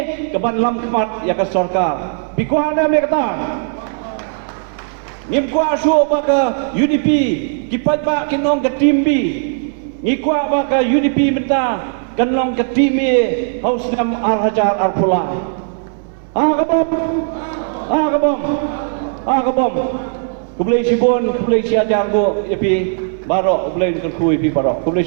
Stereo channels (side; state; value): left; silent; 64 dB below the other